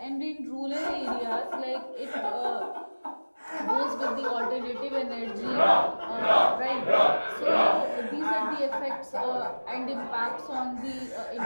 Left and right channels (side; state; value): both; inverted; correlation -1.00